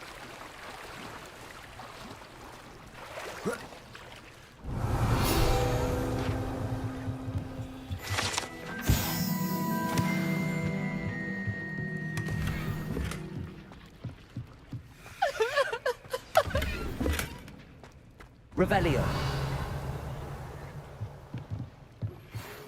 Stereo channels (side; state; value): both; identical; correlation 1.00